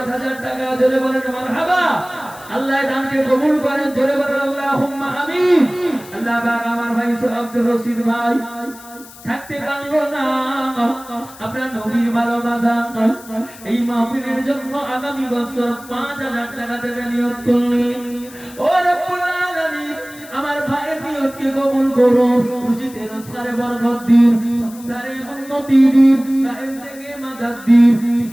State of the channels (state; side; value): noise; left; hiss, 19 dB below the sound